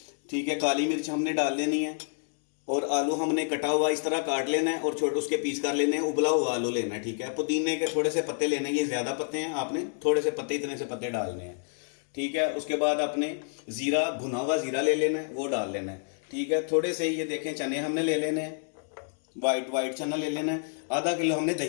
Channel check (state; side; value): silent; right; digital silence